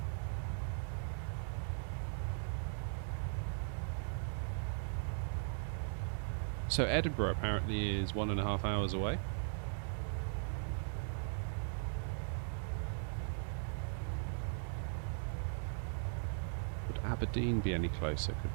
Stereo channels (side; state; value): left; silent; digital silence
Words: So Edinburgh apparently is 1.5 hours away. Would Aberdeen be any closer? Could